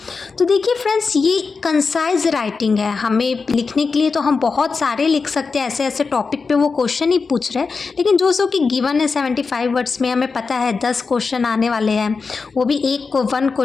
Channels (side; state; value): right; quieter; 4.7 dB